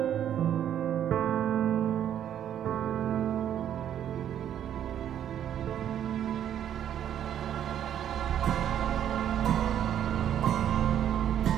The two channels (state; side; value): quieter; left; 10.1 dB